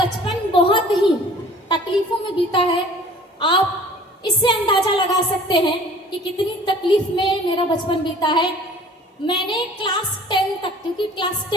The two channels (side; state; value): both; normal; correlation 0.49